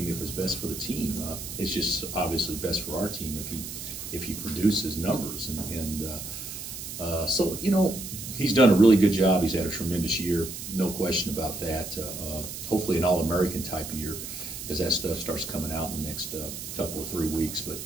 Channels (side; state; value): right; noise; hiss, 8 dB below the sound